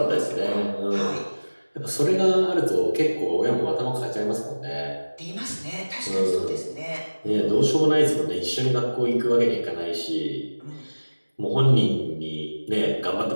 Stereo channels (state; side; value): inverted; both; correlation -1.00